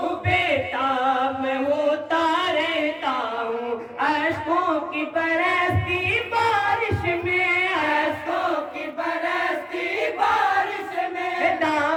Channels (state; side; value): identical; both; correlation 1.00